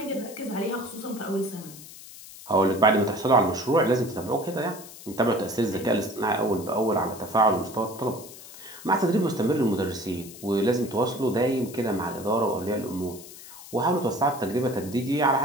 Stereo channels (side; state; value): left; noise; hiss, 16 dB below the sound